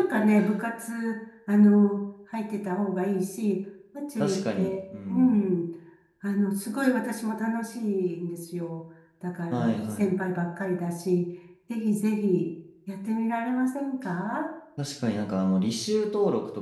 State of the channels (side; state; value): both; identical; correlation 1.00